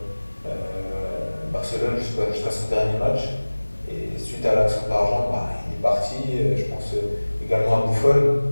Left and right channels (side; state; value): both; inverted; correlation -1.00